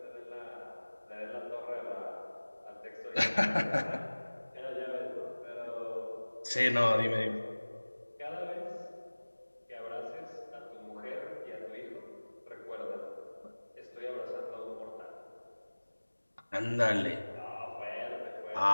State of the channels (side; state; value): both; inverted; correlation -1.00